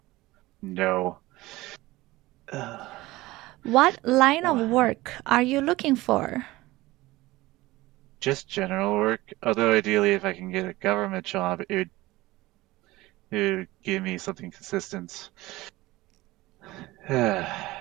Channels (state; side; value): quieter; left; 19.0 dB